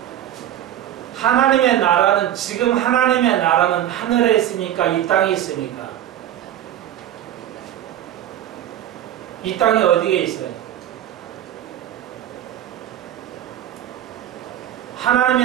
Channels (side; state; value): left; quieter; 11.7 dB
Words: 하나님의 나라는 지금 하나님의 나라는 하늘에 있습니까? 이 땅에 있습니까? 이 땅이 어디에 있어요?